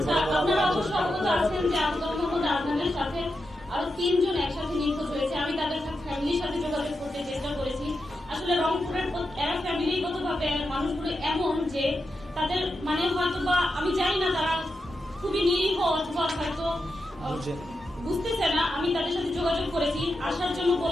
আপনারা অবশ্য অবগত আছেন যে আব্দুল মোহাম্মদ আদনানের সাথে আরো 3 জন একসাথে নিখোঁজ হয়েছে। আমি তাদের ফ্যামিলির সাথে যোগাযোগ করতে চেষ্টা করেছি। আসলে রংপুরের এরা ফ্যামিলিগত ভাবে মানুষগুলো এমন যে তাদের হয়তো বা আমি জানি না, তারা খুবই নিরীহ অথবা হয়তো বুঝতেছে না। আমি তাদের সাথে যোগাযোগ করেছি, আসার জন্য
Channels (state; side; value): normal; both; correlation 0.88